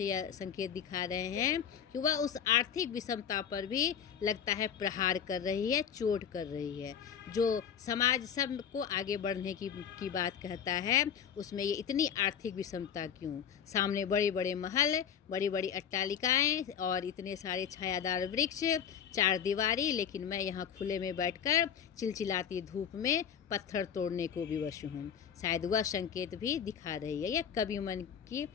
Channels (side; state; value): right; quieter; 8.2 dB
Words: यह संकेत दिखा रहे हैं कि वह उस आर्थिक विषमता पर भी लगता है प्रहार कर रही है, चोट कर रही है। जो समाज सबको आगे बढ़ने की बात कहता है, उसमें ये इतनी आर्थिक विषमता क्यों? सामने बड़े बड़े महल, बड़ी बड़ी अट्टालिकाएं और इतने सारे छायादार वृक्ष, चार दीवारी, लेकिन मैं यहाँ खुले में बैठकर चिलचिलाती धूप में पत्थर तोड़ने को विवश हूँ। शायद वह संकेत भी दिखा रही है। यह कवि मन की